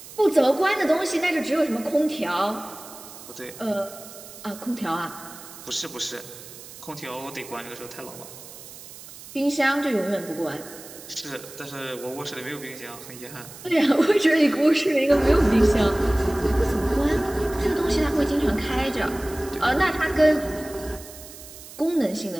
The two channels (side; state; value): right; noise; hiss, 16 dB below the sound